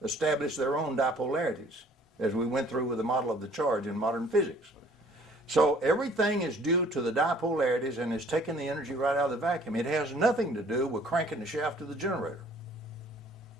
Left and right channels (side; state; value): both; normal; correlation 0.56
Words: establish their own dipolarities, as we went through with the model of the charge in modern physics. So everything is due to the dipolarities and is taking the energy right out of the vacuum. It has nothing to do with cranking the shaft of the generator.